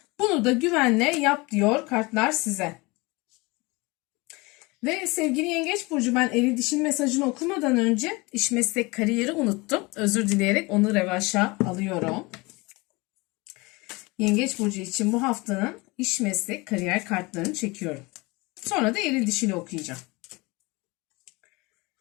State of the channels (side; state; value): right; quieter; 24.7 dB